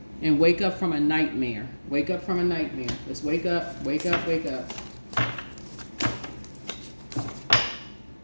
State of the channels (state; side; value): inverted; both; correlation -1.00